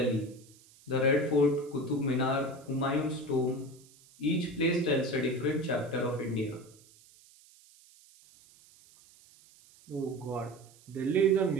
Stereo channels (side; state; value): right; noise; hiss, 26 dB below the sound